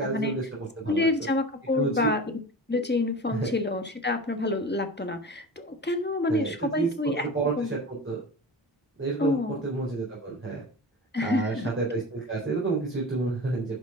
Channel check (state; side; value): normal; both; correlation 0.33